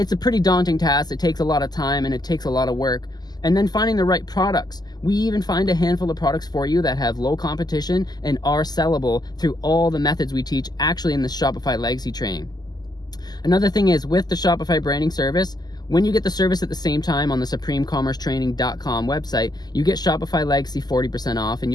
a pretty daunting task. It takes a lot of time and it takes a lot of work. And then finding the right products. We even find a handful of products for you that have low competition and are sellable through all the methods we teach actually in the Shopify Legacy Training. Another thing is, with the Shopify branding service, when you get the service at the same time on the SupremeCommerceTraining.com website, you get Shopify Legacy 40% off, and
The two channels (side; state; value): right; late; 0.20 ms